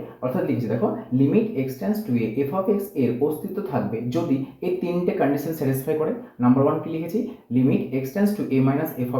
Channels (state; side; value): identical; both; correlation 1.00